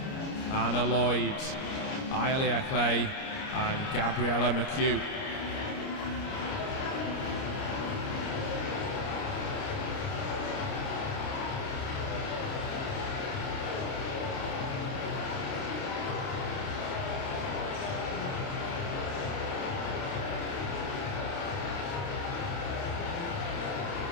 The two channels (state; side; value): late; right; 29 ms